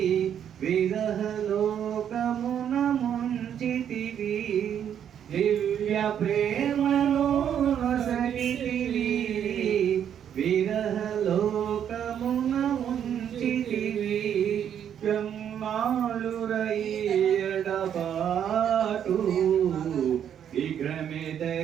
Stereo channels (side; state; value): left; quieter; 9.1 dB